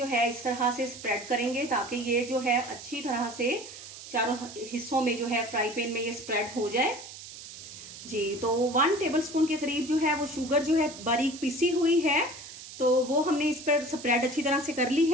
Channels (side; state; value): right; noise; hiss, 14 dB below the sound